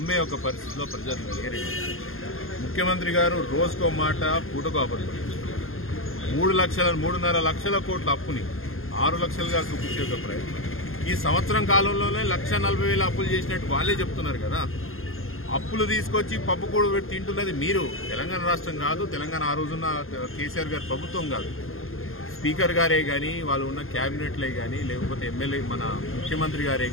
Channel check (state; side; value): late; right; 0.61 ms